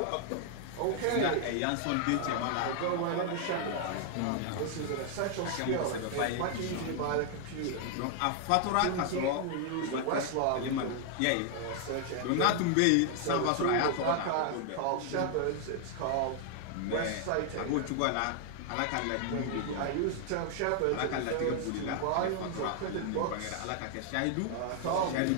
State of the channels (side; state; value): both; different; correlation 0.00